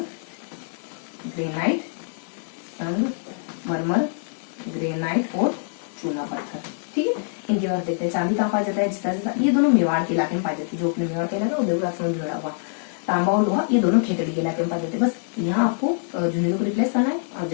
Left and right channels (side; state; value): right; silent; 62 dB below the other